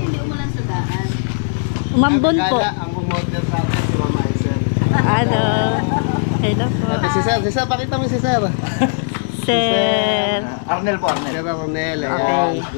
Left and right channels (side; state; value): right; silent; digital silence